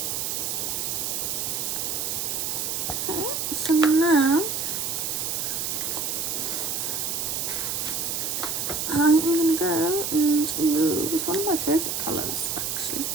my favourite colours actually,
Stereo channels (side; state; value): right; noise; hiss, 1 dB below the sound